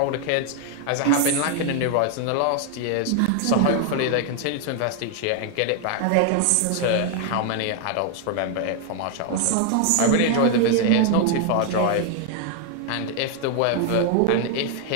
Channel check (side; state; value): both; different; correlation 0.00